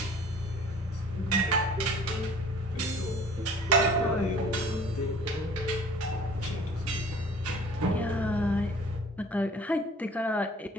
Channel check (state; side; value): normal; both; correlation 0.49